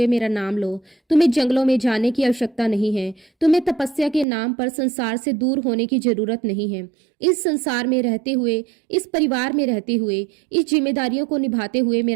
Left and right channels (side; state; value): left; drops out; at 4.2 s